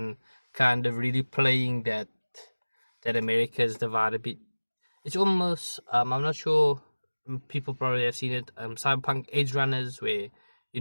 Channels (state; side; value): inverted; both; correlation -1.00